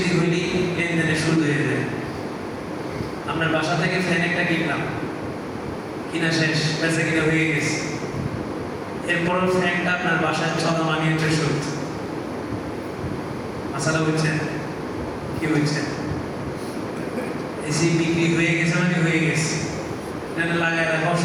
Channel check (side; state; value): both; identical; correlation 1.00